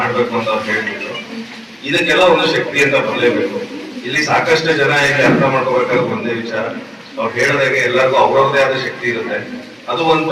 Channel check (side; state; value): both; identical; correlation 1.00